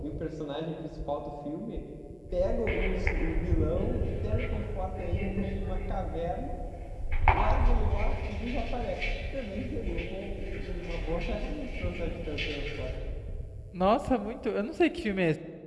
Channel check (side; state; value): both; identical; correlation 1.00